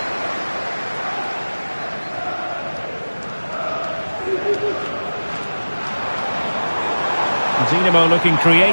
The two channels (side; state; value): both; inverted; correlation -1.00